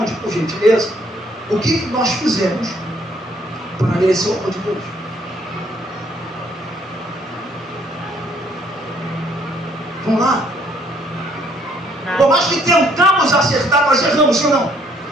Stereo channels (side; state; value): both; normal; correlation 0.65